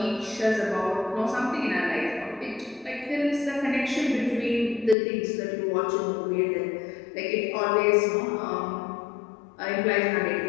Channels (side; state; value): right; drops out; at 5.0 s